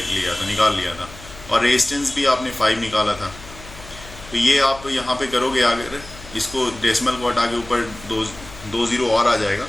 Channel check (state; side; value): noise; left; hum, 18 dB below the sound